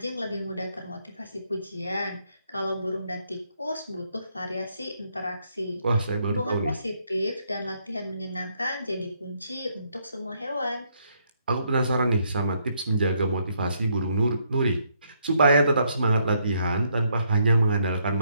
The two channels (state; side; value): inverted; both; correlation -0.73